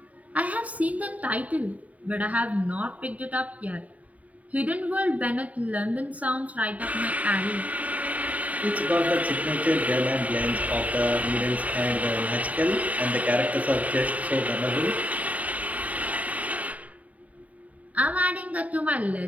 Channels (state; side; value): late; left; 0.070 ms